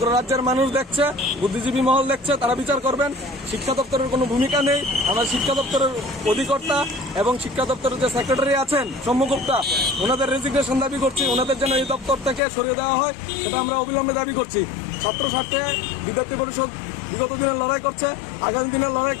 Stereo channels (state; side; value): drops out; right; at 12.4 s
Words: রাজ্যের মানুষ দেখছে, বুদ্ধিজীবী মহল দেখছে, তারা বিচার করবেন। শিক্ষা দপ্তরের কোনো ভূমিকা নেই। আমরা শিক্ষা দপ্তরের অধিকর্তা এবং শিক্ষা দপ্তরের যে সেক্রেটারি আছেন সম্মুখতা, ওনাদের রেজিগনেশন দাবি করছি। ওনাদের যেন এই দপ্তর থেকে সরিয়ে দেওয়া হয়, সেটা আমরা অবিলম্বে দাবি করছি। ছাত্র স্বার্থে বিদ্যার্থী পরিষদ বিগত দিনের লড়াই করছে, আগামী দিনের লড়াই